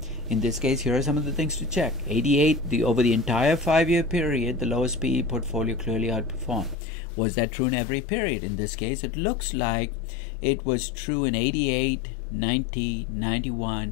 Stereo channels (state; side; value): drops out; right; at 6.8 s